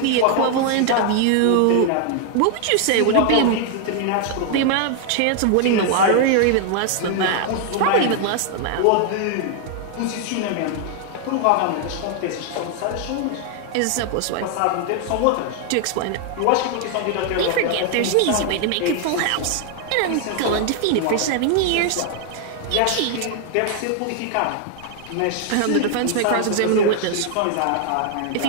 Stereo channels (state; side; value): different; both; correlation 0.00